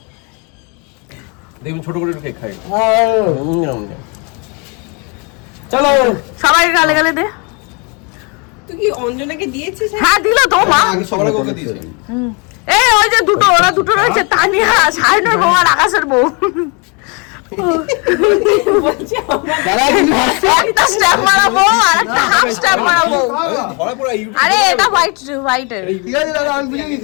দেখুন ছোট করে কেক খাই। চলো সবাইকে গালে গালে দে। তুই কি অঞ্জনাকে দিয়েছিস? হ্যাঁ দিল তো মা। সবার ওকে দিয়েছে। এই ওই যে দুটো, ওরা দুটো রয়েছে, তানিয়া সাইনের বউ আর আকাশের বউ। একটা স্ট্যাম্প মারা বউ আর একটা হাফ স্ট্যাম্প মারা বউ। ধরা পড়া ইউটিউব। আরে এটা হোয়াইটের। ঠিক আছে দাদা, আমি বুঝে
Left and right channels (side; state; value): right; quieter; 32.5 dB